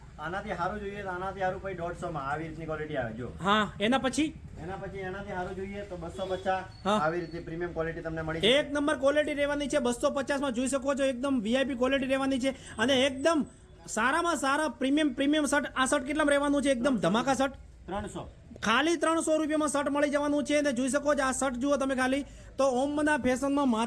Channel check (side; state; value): both; identical; correlation 1.00